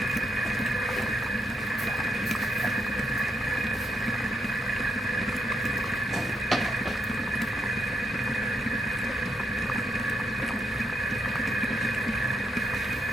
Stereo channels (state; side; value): normal; both; correlation 0.78